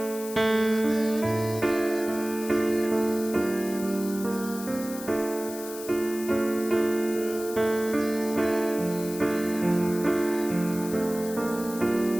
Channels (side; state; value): left; noise; hiss, 12 dB below the sound